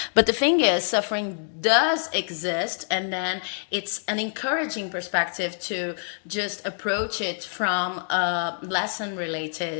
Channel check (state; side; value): silent; right; 61 dB below the other